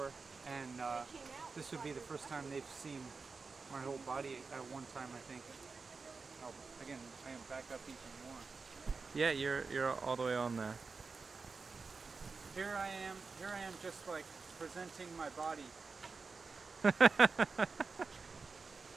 and this would be the first time they've seen my whole body at one time, I think. Oh, again, I am back up even more. Yeah, you're all the way on there. Here I am just like presenting my body. And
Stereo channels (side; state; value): left; quieter; 4.5 dB